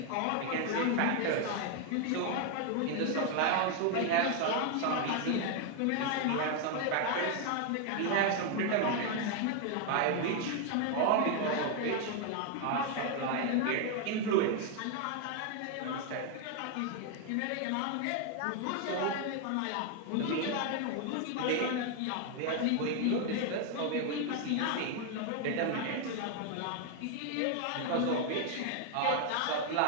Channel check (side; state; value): both; different; correlation 0.01